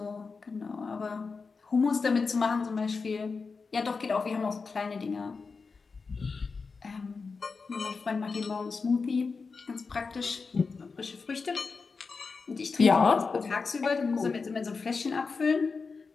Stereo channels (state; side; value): quieter; right; 4.7 dB